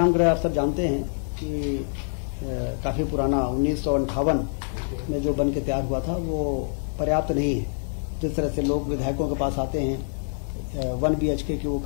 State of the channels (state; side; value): silent; right; digital silence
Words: गृह आप सब जानते हैं कि काफी पुराना 1958 में जो बन के तैयार हुआ था, वो पर्याप्त नहीं है। जिस तरह से लोग विधायकों के पास आते हैं, 1 BHK के वो